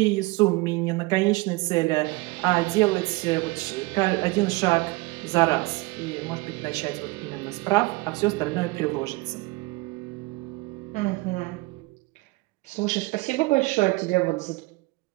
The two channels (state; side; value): quieter; left; 23.2 dB